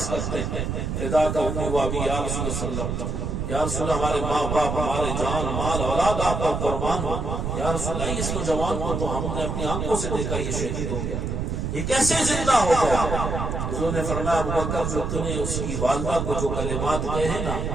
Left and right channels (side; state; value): right; noise; rumble, 2 dB below the sound